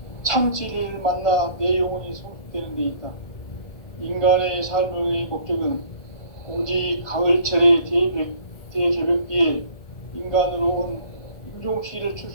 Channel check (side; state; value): right; late; 1.8 ms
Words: 참 진리를 만나 내 영혼이 성숙되는 데 있다. 인간의 삶의 목적은 오직 가을철의 대개벽기에 인간으로 온 인종시를